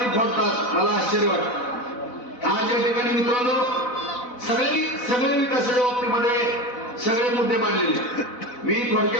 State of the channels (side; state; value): right; late; 4.0 ms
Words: फोडतात. मला आश्चर्य वाटतं. आज या ठिकाणी मित्रांनो सगळे विकासाच्या बाबतीमध्ये सगळे मुद्दे मांडलेले. मी